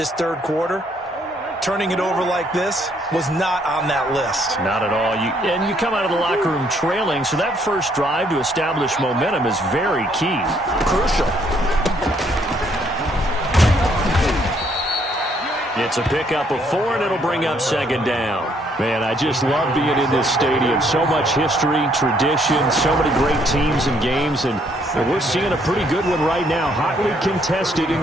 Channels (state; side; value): normal; both; correlation 0.68